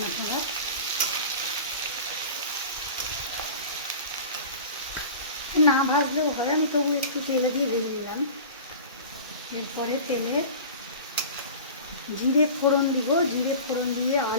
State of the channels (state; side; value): inverted; both; correlation -0.37